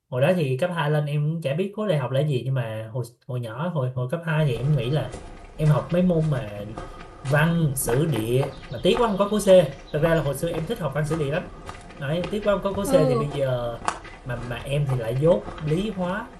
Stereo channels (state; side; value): identical; both; correlation 1.00